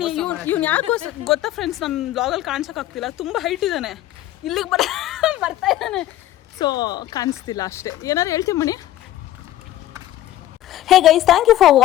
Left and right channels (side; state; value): right; quieter; 13.7 dB